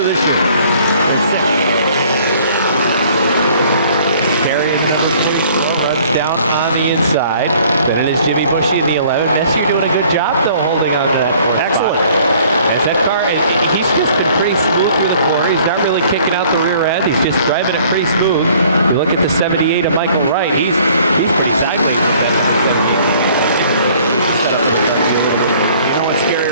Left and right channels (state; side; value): inverted; both; correlation -0.56